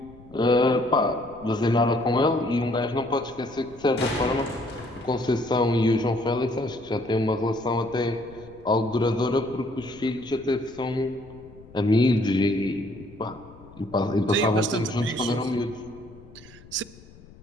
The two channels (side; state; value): left; noise; rumble, 22 dB below the sound